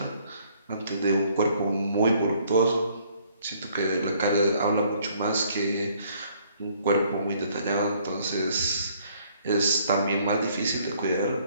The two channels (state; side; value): inverted; both; correlation -0.63